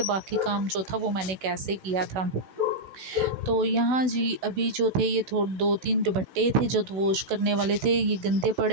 बाकी काम जो था वो मैंने कैसे किया था। तो यहाँ जी, अभी जो थे ये थोड़े 2-3 दुपट्टे थे जो वॉश करने वाले थे, ये गंदे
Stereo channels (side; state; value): left; late; 16 ms